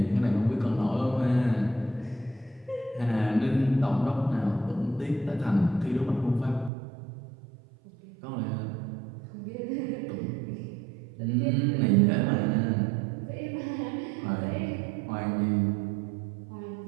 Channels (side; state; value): left; drops out; at 6.7 s